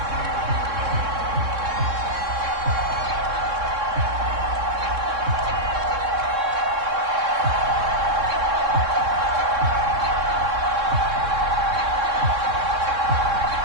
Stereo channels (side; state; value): left; late; 3.6 ms